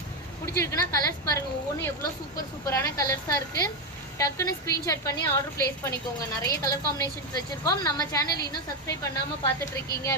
பிடிச்சிருக்குன்னா கலர்ஸ் பாருங்கள், ஒவ்வொன்றும் எவ்வளோ சூப்பரான கலர்ஸாக இருக்குது. டக்குன்னு ஸ்க்ரீன்ஷாட் பண்ணி ஆர்டர் பிளேஸ் பண்ணிக்கோங்க. நிறைய கலர் காம்பினேஷன்ஸ் வச்சுருக்கோம். நம்ம சேனல் இன்னும் சப்ஸ்கிரைப் பண்ணாமல் பார்த்துட்டு இருக்கீங்க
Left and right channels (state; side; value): normal; both; correlation 0.08